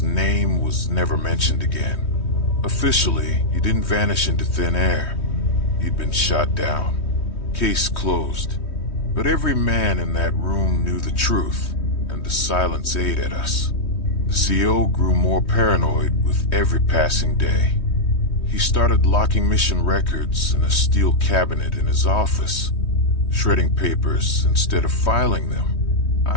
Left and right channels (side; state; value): right; late; 3.2 ms